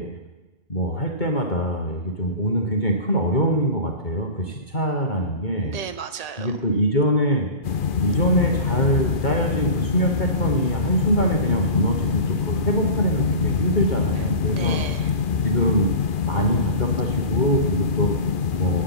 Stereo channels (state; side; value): late; right; 2.4 ms